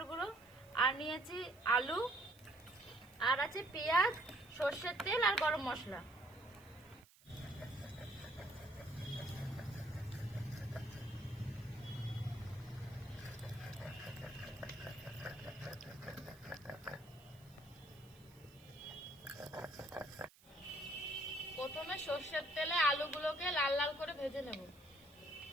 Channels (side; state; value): right; noise; hiss, 26 dB below the sound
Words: গুঁড়ো, আর নিয়েছি আলু, আর আছে পেঁয়াজ, সর্ষের তেল আর গরম মশলা। প্রথমে সর্ষের তেলে আলুগুলোকে লাল লাল করে ভেজে নেব।